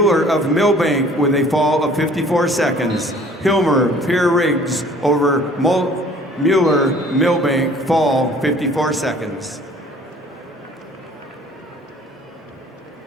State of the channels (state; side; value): normal; both; correlation 0.52